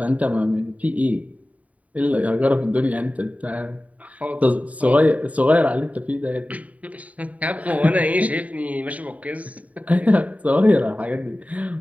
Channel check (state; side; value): late; left; 0.069 ms